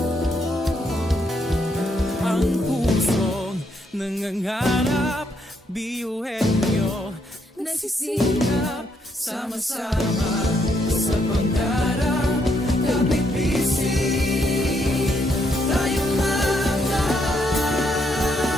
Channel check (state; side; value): normal; both; correlation 0.75